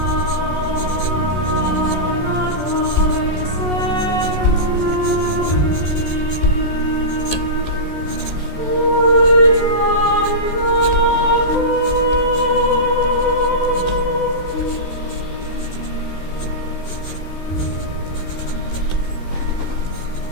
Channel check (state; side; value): late; right; 14 ms